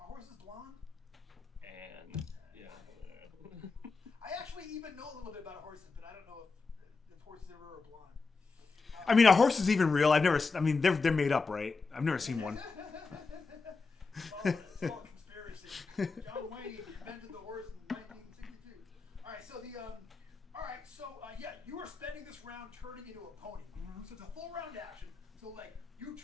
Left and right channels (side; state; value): right; quieter; 4.3 dB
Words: horse is blonde? And yeah. I actually even know a little bit about horses, but I don't know if horses ever are blonde. I mean, a horse is even real. They're made up, right? I've never seen one. It's all conspiracy. John Wayne invented the horse in 1962. All right, so you are spending this round turning into a pony. So it's a full round action. So like you